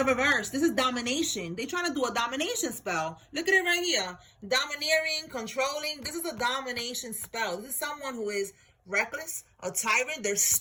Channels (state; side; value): identical; both; correlation 1.00